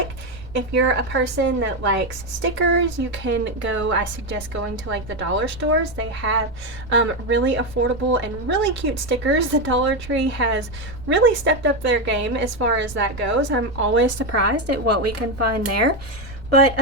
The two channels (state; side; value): noise; right; rumble, 15 dB below the sound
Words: If you're a person that likes stickers, you can go, I suggest going to like the dollar stores. They have really affordable and really cute stickers. The Dollar Tree has really stepped up their game as far as that goes. I'm always surprised at what we can find there. But